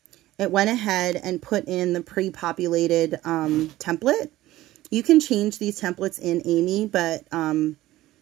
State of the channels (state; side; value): quieter; left; 16.1 dB